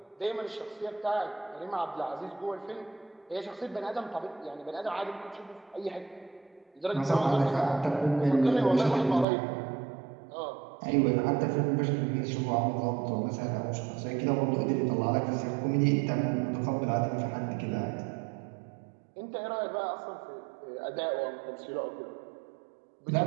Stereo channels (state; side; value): drops out; left; at 9.2 s